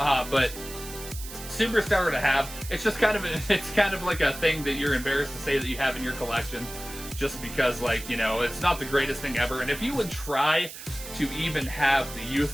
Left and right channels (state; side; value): noise; right; hiss, 12 dB below the sound